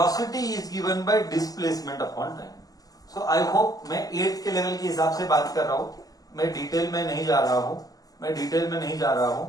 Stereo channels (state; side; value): late; right; 0.18 ms